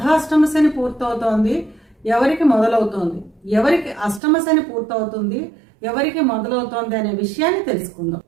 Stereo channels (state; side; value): drops out; left; at 4.2 s